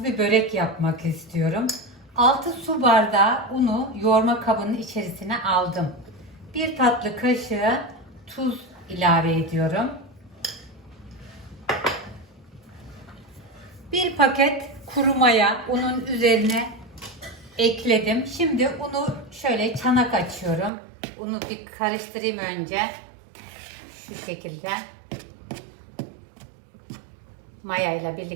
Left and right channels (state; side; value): drops out; left; at 20.7 s